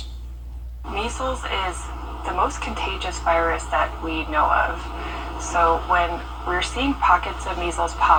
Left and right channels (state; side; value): identical; both; correlation 1.00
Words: Measles is the most contagious virus that we know of. So when we're seeing pockets of measles